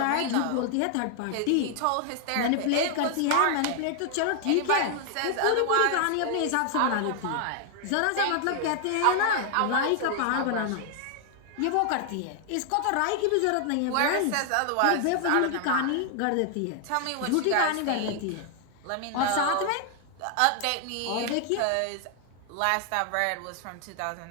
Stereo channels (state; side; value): different; both; correlation 0.00